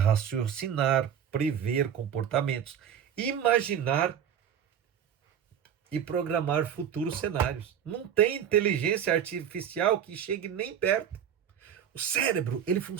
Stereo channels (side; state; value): left; quieter; 8.7 dB